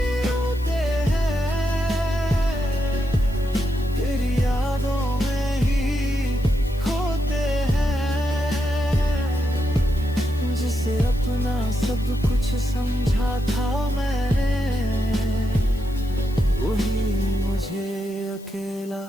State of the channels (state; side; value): noise; left; hiss, 23 dB below the sound